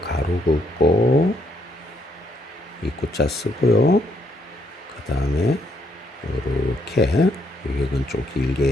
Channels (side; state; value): both; normal; correlation 0.72